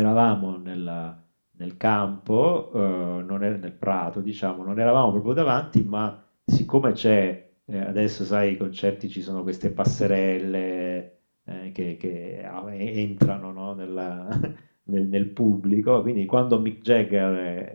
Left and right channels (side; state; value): both; inverted; correlation -1.00